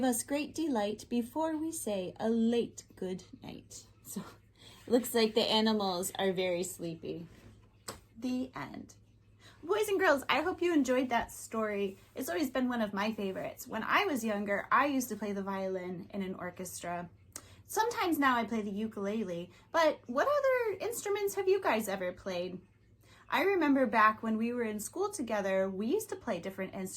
us great delight before we say a late good night. So it looks like the animals are very sleepy. The end. Boys and girls, I hope you enjoyed that story. It's always been one of my favorites. When I was younger, I used to play the violin in an orchestra. Sometimes now I play the ukulele, but what other instruments have you guys ever played? I remember back when we were in school together, we used to play different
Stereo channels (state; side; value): identical; both; correlation 1.00